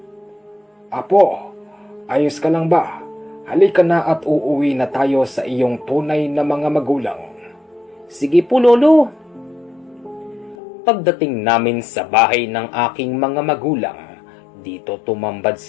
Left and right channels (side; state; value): right; drops out; at 10.6 s